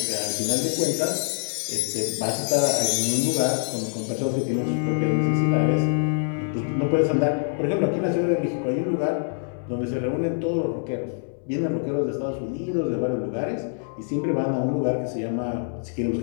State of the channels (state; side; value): silent; right; 62 dB below the other